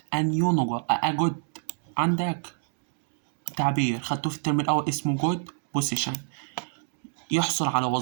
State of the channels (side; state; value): left; silent; digital silence